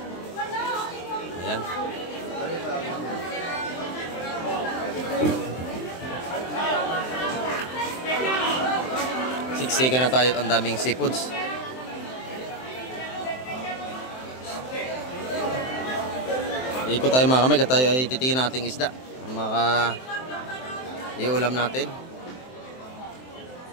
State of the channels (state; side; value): late; right; 23 ms